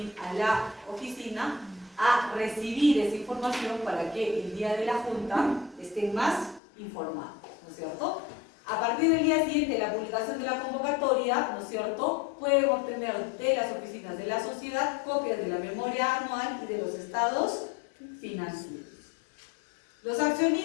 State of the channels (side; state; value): right; drops out; at 6.6 s